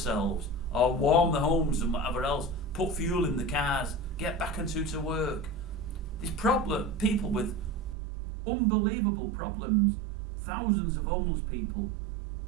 or warm their homes and whatever else, put fuel in the cars, get back to work. These people with unbelievable problems, thousands of homeless people,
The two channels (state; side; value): drops out; left; at 8.0 s